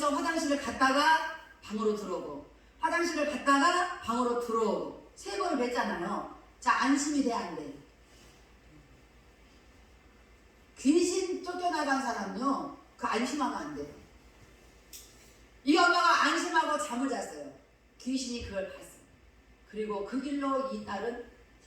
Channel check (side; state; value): both; identical; correlation 1.00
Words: 화장실을 갔다가 방으로 들어오고 화장실을 갔다가 방으로 들어오고 3번을 뵀잖아요. 자 안심이 돼 안 돼? 귀신 쫓겨나간 사람요 그 안심하면 안 돼. 이 엄마가 안심하고 잠을 잤어요. 귀신이 그걸 봤어요. 그리고 그 길로 이 딸은